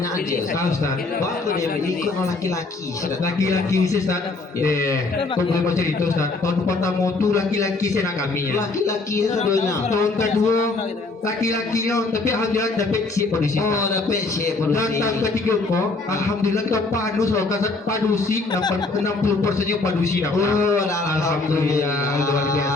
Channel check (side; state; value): right; quieter; 3.5 dB